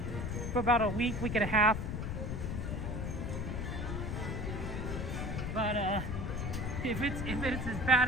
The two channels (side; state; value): left; noise; rumble, 3 dB below the sound